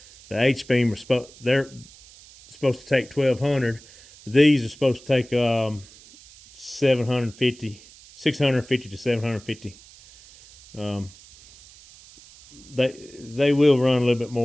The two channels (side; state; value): right; noise; hiss, 23 dB below the sound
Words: The H-beam they're supposed to take 1,200. These are supposed to take 650 to 750. They will run a little bit